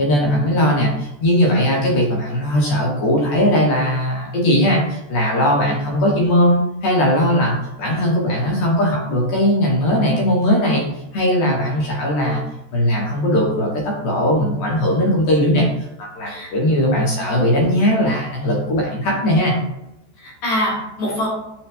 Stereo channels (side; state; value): right; late; 14 ms